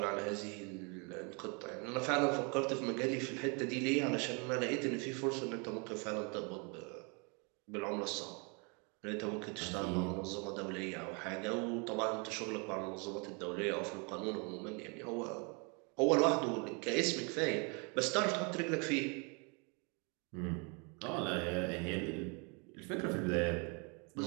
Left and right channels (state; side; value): quieter; left; 33.4 dB